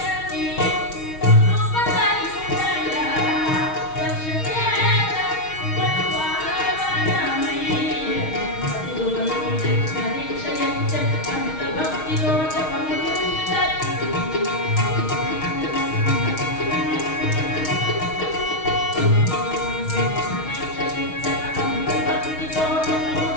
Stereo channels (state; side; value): late; right; 6.4 ms